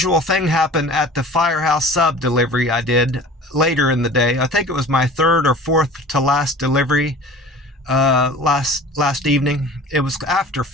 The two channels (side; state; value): both; normal; correlation 0.42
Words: thing happen at the Firehouse Sub delivery I did later in the day. I think it was my 3rd or 4th to last delivery last evening. It was after